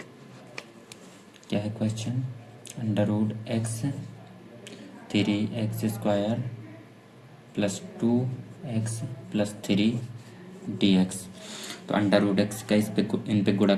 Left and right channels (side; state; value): both; identical; correlation 1.00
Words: क्या है question under root X 3x square plus 2x plus 3 D X. तो अंडर रूट एक्स का इन पे गुणा